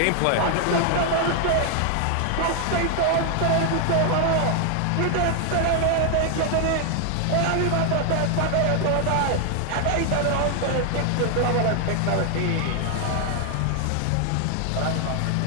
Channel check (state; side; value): different; both; correlation 0.00